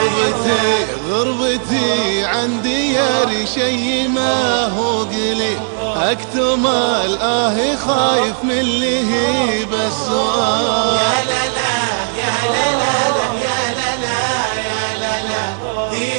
غربتي عن دياري شي ما هو قليل، اكتم خايف من اللي هي بالسؤال. يا لا يا لا يا لا،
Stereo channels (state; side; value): silent; left; digital silence